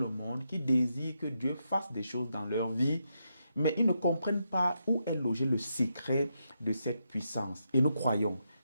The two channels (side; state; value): both; inverted; correlation -0.83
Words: monde qui désirent que Dieu fasse des choses dans leur vie, mais ils ne comprennent pas où est logé le secret de cette puissance. Et nous croyons